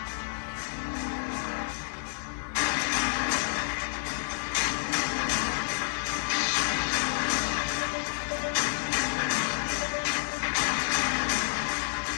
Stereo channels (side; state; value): right; silent; digital silence